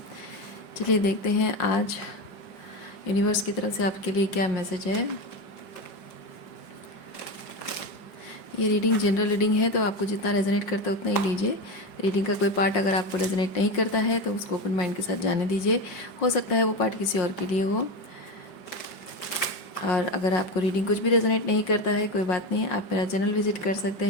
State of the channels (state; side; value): late; right; 5.6 ms